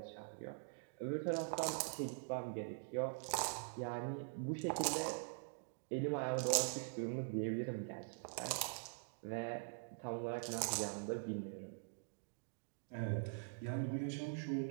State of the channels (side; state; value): left; silent; digital silence